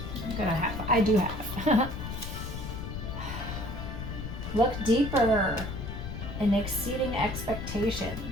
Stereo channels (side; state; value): left; noise; rumble, 7 dB below the sound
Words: I do have. Look deeper in exceeding